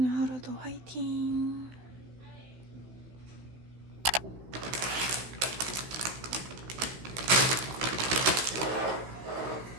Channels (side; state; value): left; late; 16 ms